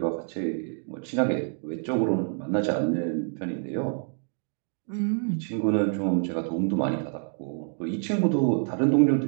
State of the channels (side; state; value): left; silent; 60 dB below the other